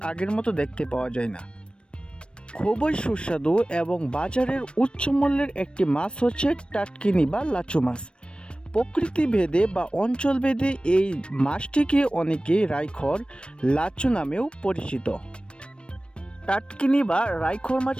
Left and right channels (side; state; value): right; late; 0.057 ms